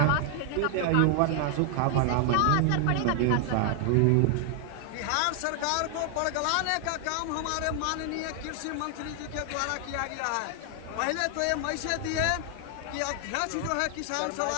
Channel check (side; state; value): both; different; correlation 0.00